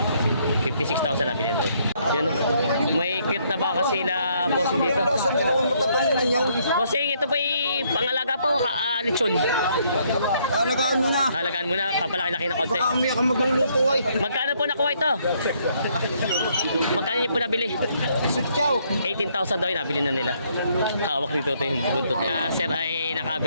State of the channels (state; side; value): inverted; both; correlation -0.70